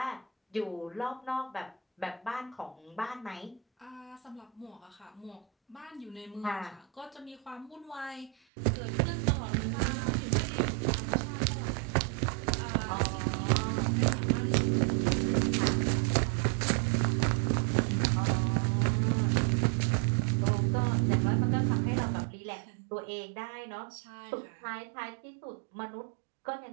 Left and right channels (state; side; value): drops out; left; at 8.3 s